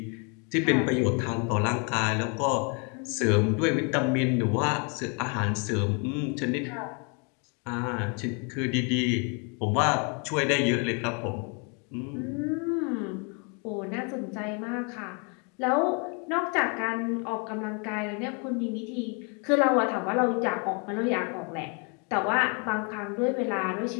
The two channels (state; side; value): quieter; right; 35.4 dB